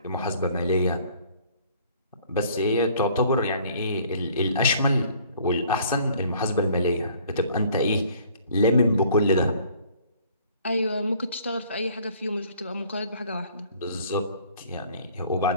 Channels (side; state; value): both; inverted; correlation -0.56